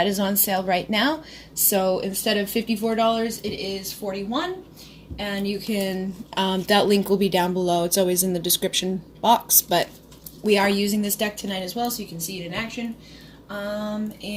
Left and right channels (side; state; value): both; identical; correlation 1.00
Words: is on sale right now. So instead of $54, it is $41. And you can, that link will be down below. It's always in the description box, but we are using this deck tonight as well, so you can see it in action.